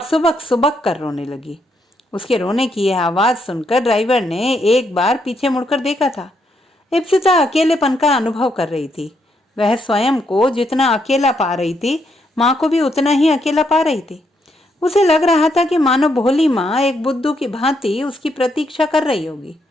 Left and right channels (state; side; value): normal; both; correlation 0.77